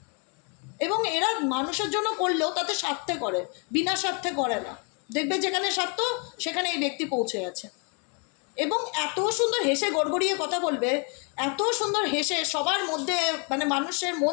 এবং এরা মানুষের জন্য করলেও তাতে স্বার্থে করে, বিনা স্বার্থে করে না। দেখবে যেখানে স্বার্থ, সেখানে এই ব্যক্তি পৌঁছে গেছে। এবং এত সুন্দর হেসে গড়গড়িয়ে কথা বলবে, এত সুন্দর হেসে সবার মধ্যে মানে মানুষের মন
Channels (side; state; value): right; quieter; 37.1 dB